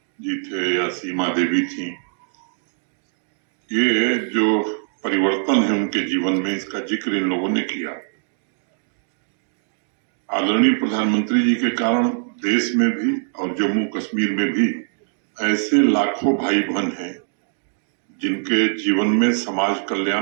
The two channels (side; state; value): left; silent; digital silence